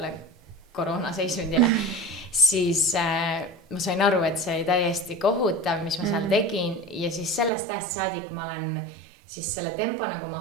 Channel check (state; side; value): drops out; left; at 7.5 s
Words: koroonaseisundile, siis ma sain aru, et see oli täiesti kohutav, mis ma seal tegin ja siis sellest ajast saadik ma olen siis selle tempo nagu